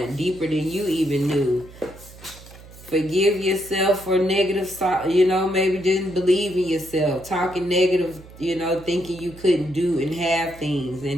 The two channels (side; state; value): right; noise; hum, 19 dB below the sound